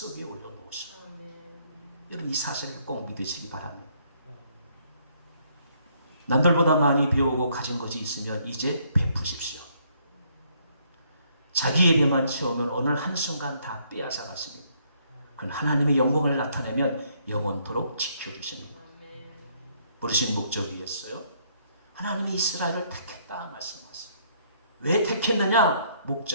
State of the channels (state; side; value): inverted; both; correlation -0.68